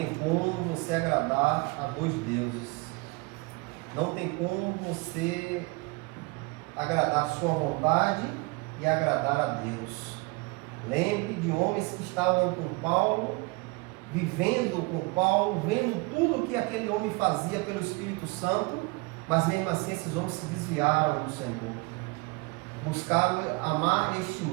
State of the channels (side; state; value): left; quieter; 26.1 dB